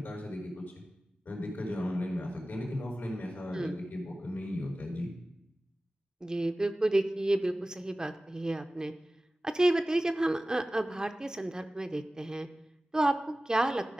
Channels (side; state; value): both; normal; correlation 0.97